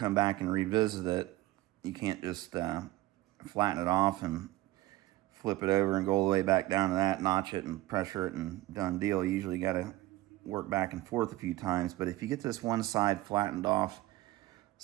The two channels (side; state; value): left; quieter; 17.6 dB